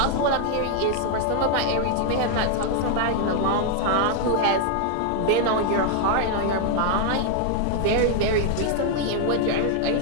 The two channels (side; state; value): both; different; correlation 0.00